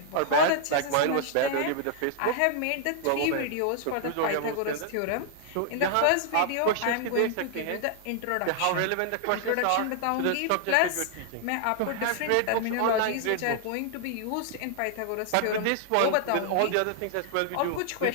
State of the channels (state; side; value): different; both; correlation 0.00